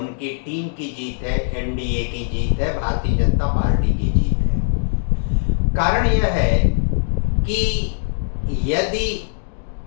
टीम की जीत है, एनडीए की जीत है, भारतीय जनता पार्टी की जीत है। कारण यह है कि यदि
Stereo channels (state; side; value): silent; right; 65 dB below the other